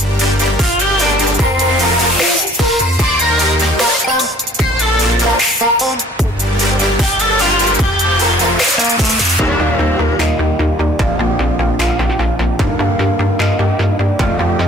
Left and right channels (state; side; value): normal; both; correlation 0.59